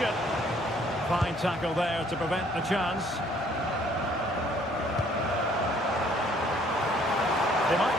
Fine tackle there to prevent the chance. They might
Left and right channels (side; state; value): both; normal; correlation 0.61